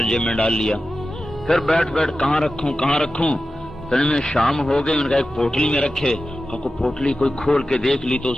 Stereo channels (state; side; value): normal; both; correlation 0.93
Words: جیب میں ڈال لیا. پھر بیٹھ کہاں رکھوں. میں شام ہو گئی. ان کا ایک پوٹلی میں رکھے. پوٹلی کوئی کھول کے دیکھ لی تو